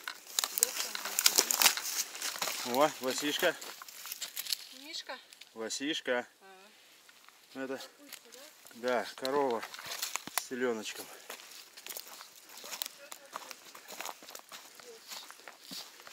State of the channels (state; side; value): identical; both; correlation 1.00